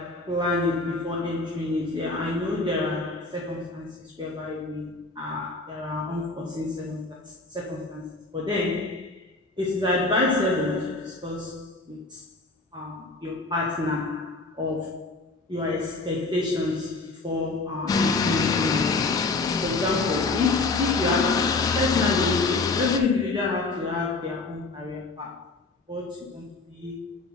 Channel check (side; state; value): right; quieter; 3.4 dB